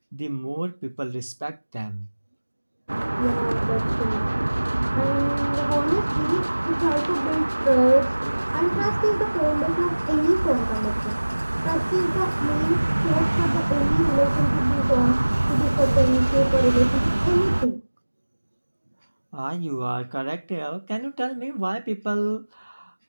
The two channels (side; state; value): both; inverted; correlation -1.00